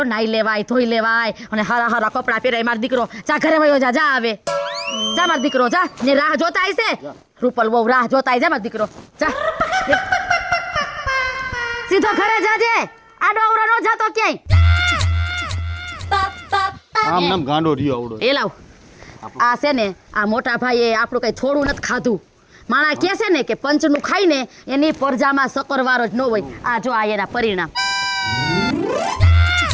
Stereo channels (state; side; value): identical; both; correlation 1.00